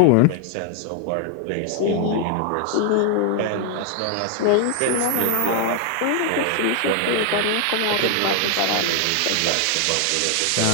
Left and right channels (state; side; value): different; both; correlation 0.00